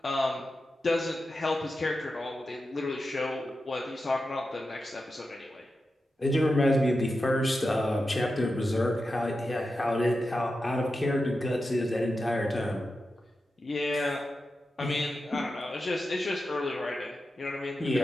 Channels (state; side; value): normal; both; correlation 0.91